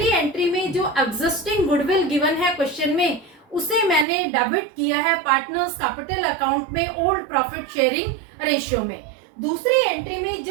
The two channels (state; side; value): drops out; left; at 4.0 s